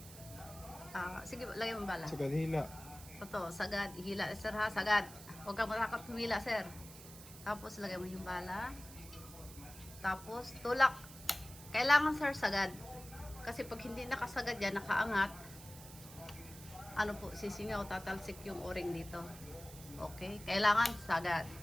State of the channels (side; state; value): right; noise; hiss, 16 dB below the sound